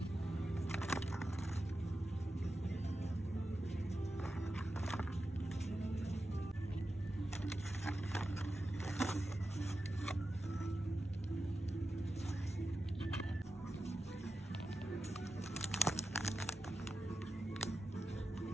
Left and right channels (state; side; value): normal; both; correlation 0.91